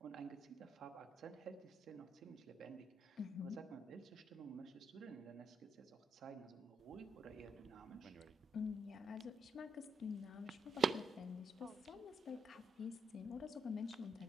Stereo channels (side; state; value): both; normal; correlation 0.78